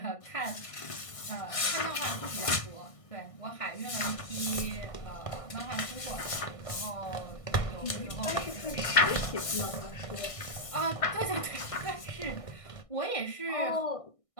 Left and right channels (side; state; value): right; late; 1.6 ms